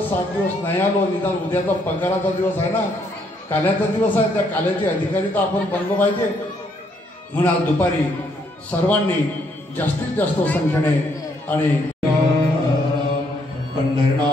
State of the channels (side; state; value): both; normal; correlation 0.71